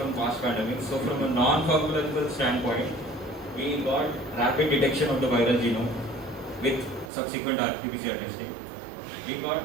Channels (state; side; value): drops out; left; at 7.1 s